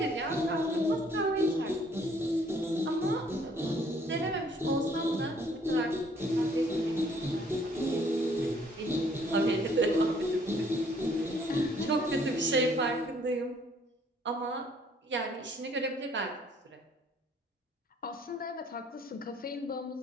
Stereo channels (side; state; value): both; normal; correlation 0.62